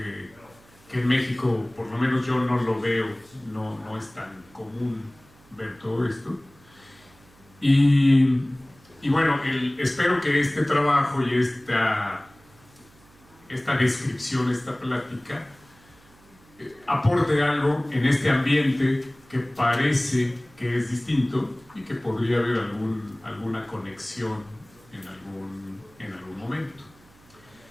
en México, por lo menos yo no lo veo, no es tan común ver todo esto. Y bueno, espero que este trabajo y esta descripción, esta plática, aporte algo en este ambiente que parece que es distinto y que podría haber alguna conexión en algún momento.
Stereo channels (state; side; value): noise; right; hum, 28 dB below the sound